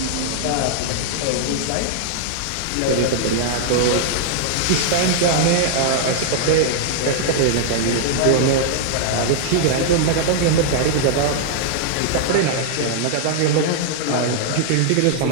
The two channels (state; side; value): different; both; correlation -0.01